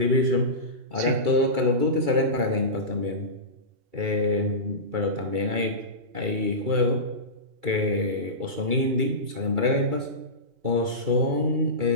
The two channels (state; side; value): late; left; 2.3 ms